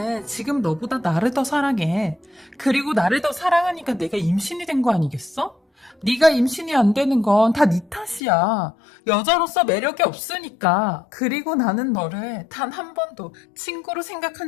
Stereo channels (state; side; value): drops out; right; at 8.2 s